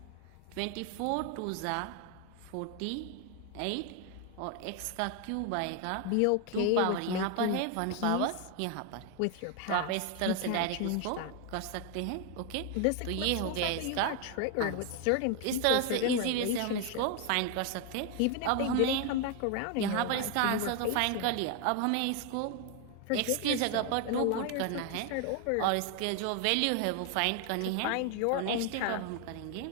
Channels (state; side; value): different; both; correlation 0.01